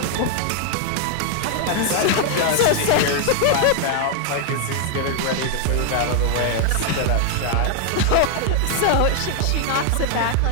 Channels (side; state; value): both; different; correlation 0.00